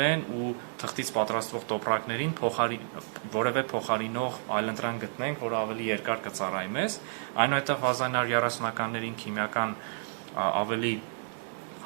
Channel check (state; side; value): silent; left; 58 dB below the other